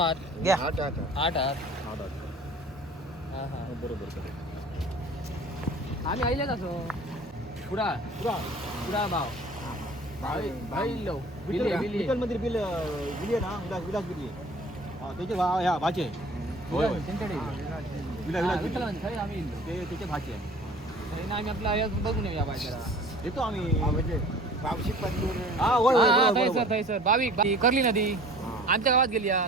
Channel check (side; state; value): both; normal; correlation 0.46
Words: घ्या. 8 आता 8 हात हा, दादा. हा हा बरोबर आम्ही आईलेच असो पुरा पुरा पुरा भाव आईलो बिल्ली बिल्ली विठ्ठल मंदिर बिल बिली आहे ना विलास बिली त्याचे ह्या भाचे होय त्यांच्याकडे विलास विठ्ठल बिली. म्हणजे खरे आम्ही इल्लो. ते त्याचे भाचे आहे हे ना आम्ही आपला आयात बघून येऊया बाय जरा येतो आम्ही म्हणजे पावशी पत्तूर हा होय होय, हा, बरोबर, थंय बरोबर. सर थंय सर बावीक करली नदी हा. आमच्या गावात गेली या